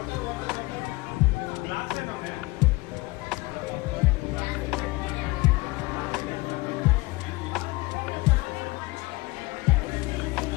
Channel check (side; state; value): right; quieter; 22.5 dB